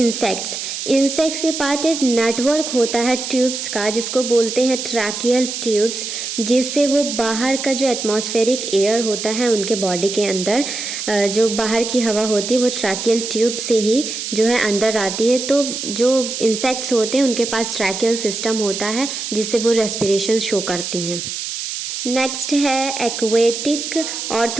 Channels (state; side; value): noise; right; hiss, 5 dB below the sound